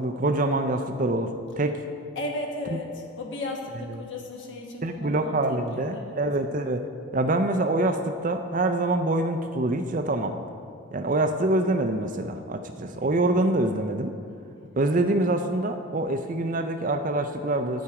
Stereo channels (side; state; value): both; normal; correlation 0.33